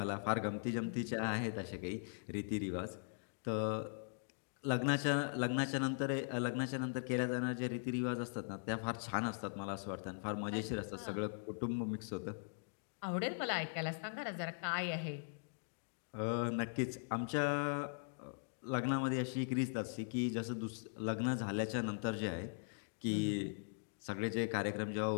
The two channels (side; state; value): right; silent; digital silence